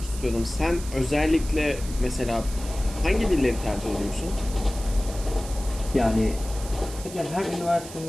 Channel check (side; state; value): right; noise; hiss, 14 dB below the sound